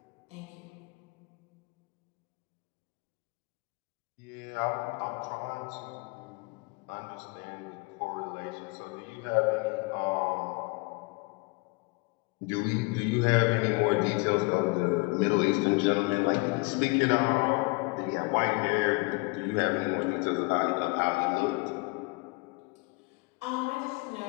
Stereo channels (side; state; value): right; quieter; 28.3 dB